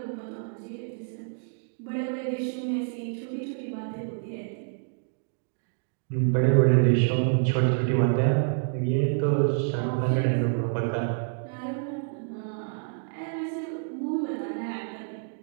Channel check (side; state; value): left; silent; digital silence